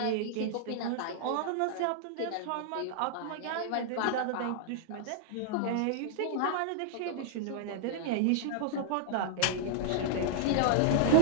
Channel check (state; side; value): different; both; correlation -0.01